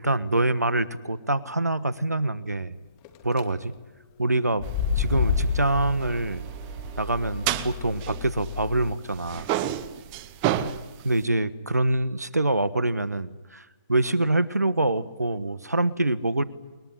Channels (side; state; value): both; inverted; correlation -0.70